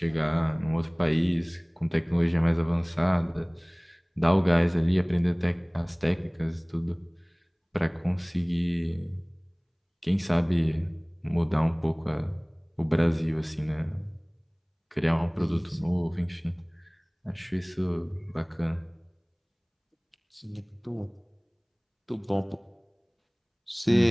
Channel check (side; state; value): both; identical; correlation 1.00